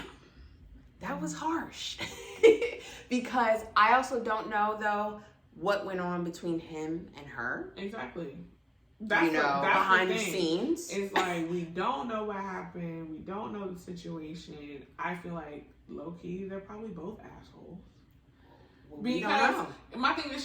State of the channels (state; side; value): identical; both; correlation 1.00